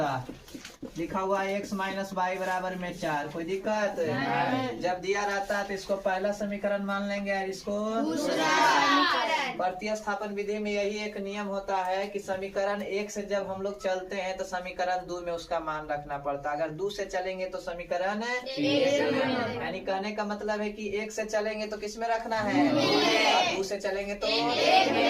लिखा हुआ है, x माइनस y बराबर में 4। कोई दिक्कत? जब दिया रहता है तो इसको पहला समीकरण मान लेंगे और इसको दूसरा। प्रतिस्थापन विधि में यही एक नियम होता है कि समीकरण 1 से जब हम लोग चलते हैं तो समीकरण 2 में उसका मान रखना पड़ता है। अगर 2 से चलेंगे तो समीकरण यानी कहने का मतलब है कि 1 से चलेंगे तो किस में रखना है, और 2 से चलेंगे तो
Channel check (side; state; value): both; identical; correlation 1.00